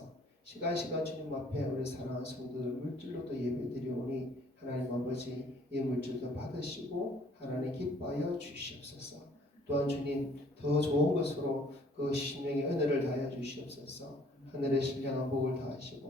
시간 주님 앞에 우리 사랑하는 성도들 물질로도 예배드리오니 하나님 아버지 이 물질도 받으시고 하나님 기뻐하여 주시옵소서. 또한 주님 더 좋은 것으로 그 심령의 은혜를 다하여 주시옵소서. 하늘의 신령한 복을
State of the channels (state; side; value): normal; both; correlation 0.59